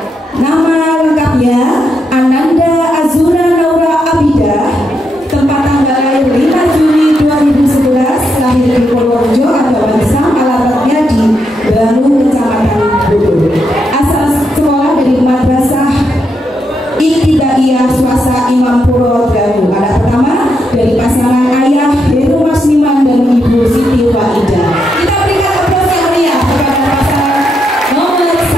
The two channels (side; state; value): both; normal; correlation 0.81